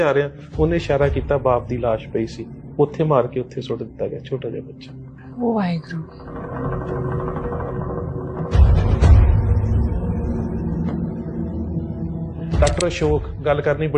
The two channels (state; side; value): identical; both; correlation 1.00